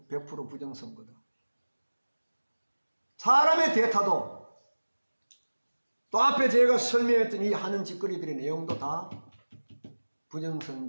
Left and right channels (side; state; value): both; inverted; correlation -1.00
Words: 100% 부정 선거다. 사람의 대타도 또 앞에 제가 설명했던 이 하는 짓거리들의 내용도 다